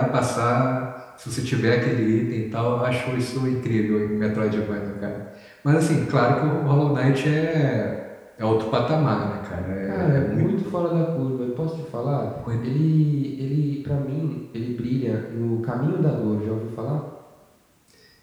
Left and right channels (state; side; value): identical; both; correlation 1.00